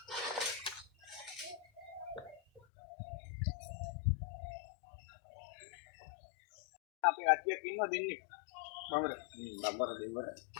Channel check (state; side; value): drops out; right; at 2.6 s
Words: අපි කට්ටියක් ඉන්නවා දෙන්නේ බම්බර දෙවර